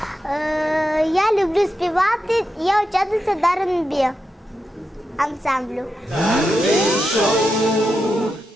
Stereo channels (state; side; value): normal; both; correlation 0.87